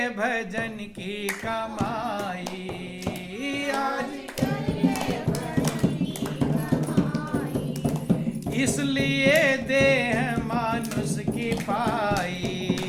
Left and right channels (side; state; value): both; identical; correlation 1.00